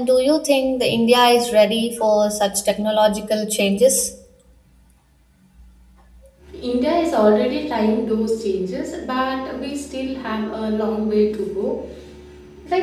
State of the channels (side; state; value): both; identical; correlation 1.00